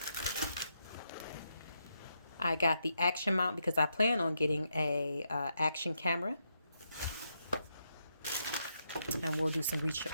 I got the action mount because I plan on getting a action camera. And we'll do some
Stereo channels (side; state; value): both; inverted; correlation -0.81